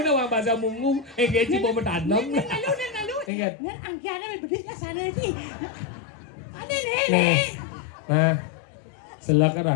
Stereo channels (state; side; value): drops out; right; at 3.3 s